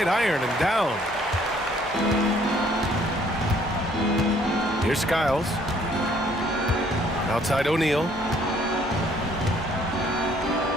iron and down. Here's Skiles. Outside O'Neal.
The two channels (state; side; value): normal; both; correlation 0.62